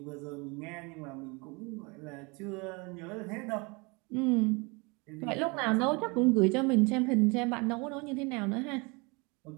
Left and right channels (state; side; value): quieter; left; 28.6 dB